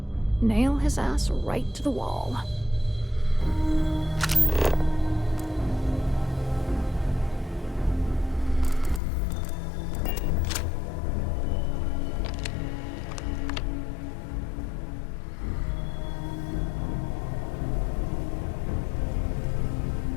Nail his ass right to the wall.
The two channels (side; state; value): right; drops out; at 9.0 s